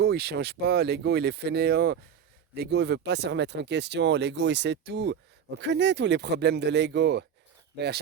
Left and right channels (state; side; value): quieter; left; 8.0 dB